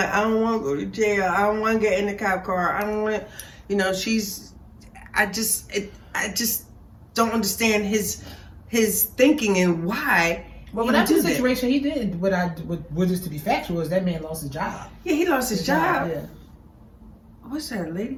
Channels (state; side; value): identical; both; correlation 1.00